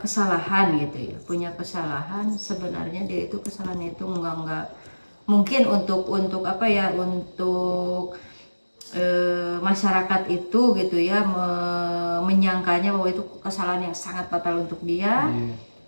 gitu ya, punya kesalahan. Sebenarnya dia itu kesalahannya itu enggak mungkin untuk apa ya, untuk masyarakat itu gitu ya menyangkanya bahwa itu kesalahan yang sangat fatal untuk dia.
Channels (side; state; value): both; inverted; correlation -1.00